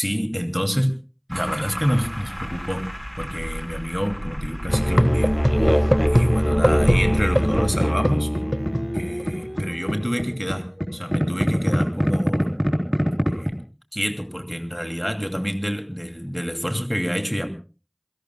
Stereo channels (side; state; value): both; identical; correlation 1.00